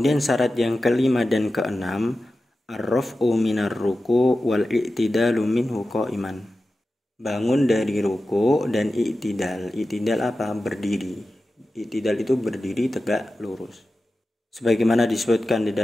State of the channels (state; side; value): normal; both; correlation 0.93